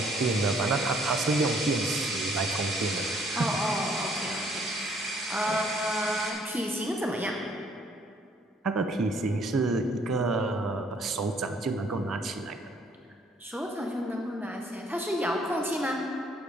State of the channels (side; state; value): both; normal; correlation 0.64